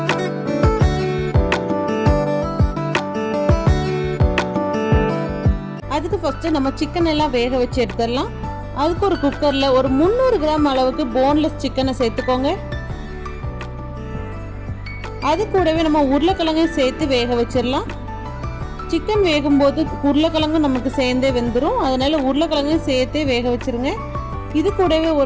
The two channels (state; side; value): identical; both; correlation 1.00